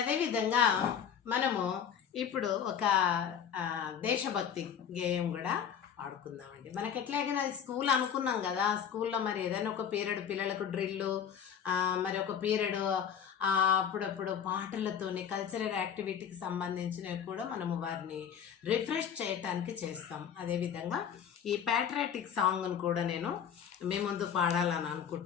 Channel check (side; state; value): right; quieter; 8.2 dB